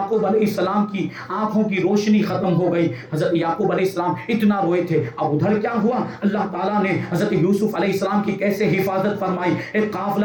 علیہ السلام کی آنکھوں کی روشنی ختم ہو گئی۔ حضرت یعقوب علیہ السلام اتنا روئے تھے۔ اب ادھر کیا ہوا، اللہ تعالیٰ نے حضرت یوسف علیہ السلام کی کیسے حفاظت فرمائی۔ ایک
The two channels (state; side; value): identical; both; correlation 1.00